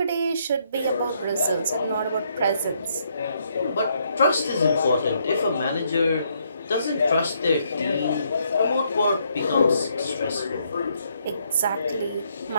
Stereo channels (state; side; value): inverted; both; correlation -0.73